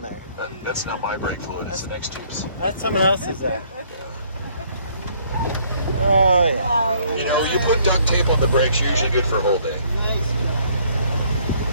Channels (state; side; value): inverted; both; correlation -0.63